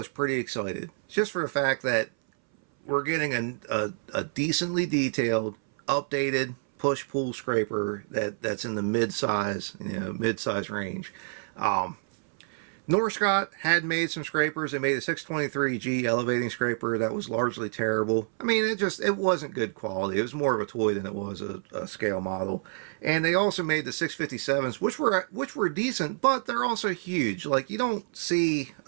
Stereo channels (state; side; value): silent; left; 59 dB below the other